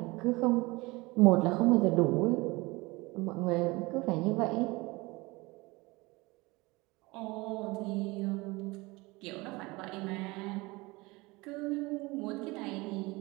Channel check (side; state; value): left; quieter; 23.3 dB